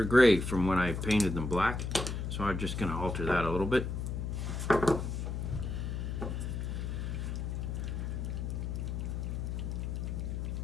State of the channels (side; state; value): left; noise; hum, 3 dB below the sound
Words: gray from when I painted them black. So I'm just going to alter that a little bit.